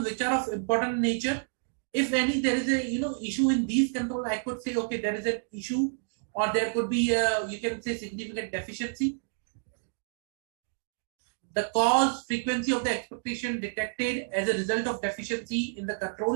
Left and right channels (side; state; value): left; silent; digital silence